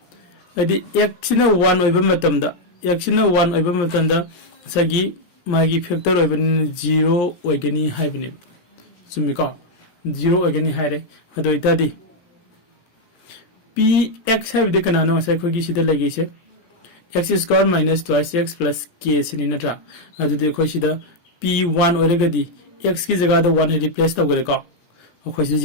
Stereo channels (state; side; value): late; right; 17 ms